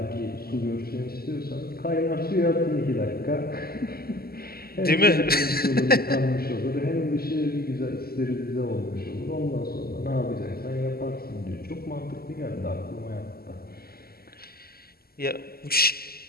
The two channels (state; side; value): late; right; 0.45 ms